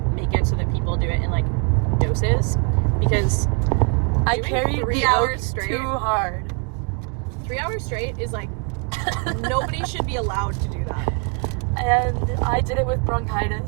make it so that people do it in like doses, because I doing carried 3 the hours oak straight. too hard. 3 hours straight is like, nobody should be allowed to do that. And I did it with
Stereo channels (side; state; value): left; quieter; 35.6 dB